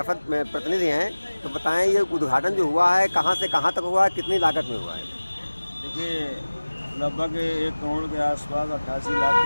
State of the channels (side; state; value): both; inverted; correlation -1.00